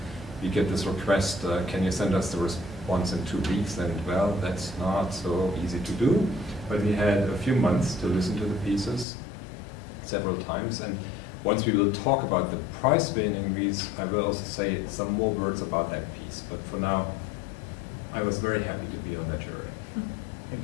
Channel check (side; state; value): right; drops out; at 9.1 s